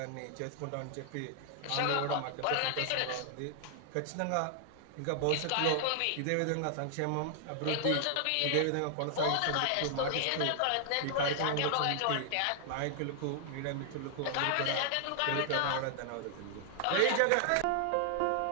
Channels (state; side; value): different; both; correlation 0.00